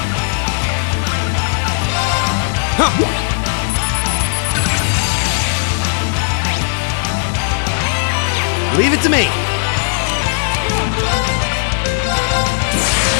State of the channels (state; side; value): silent; right; digital silence